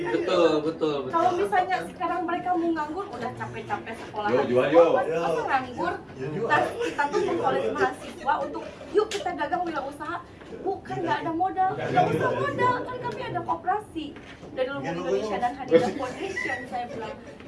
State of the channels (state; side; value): identical; both; correlation 1.00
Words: Betul. Kalau misalnya sekarang mereka mau nganggur, udah capek-capek sekolah. Jual. Masa nganggur? Kita tuh mengkolek mahasiswa untuk yuk kita dagang wirausaha. Bukan nggak ada modal, nggak usah modal, kan kami ada koperasi dari Lumbung Indonesia dan Hadida Foundation. Saya bilang